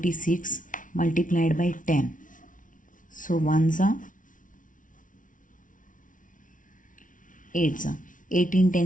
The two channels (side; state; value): right; late; 0.38 ms